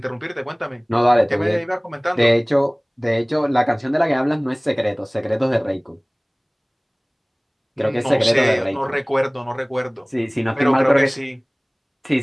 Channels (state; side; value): identical; both; correlation 1.00